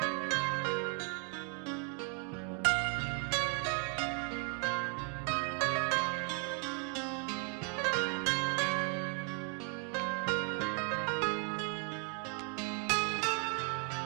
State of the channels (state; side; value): quieter; left; 37.2 dB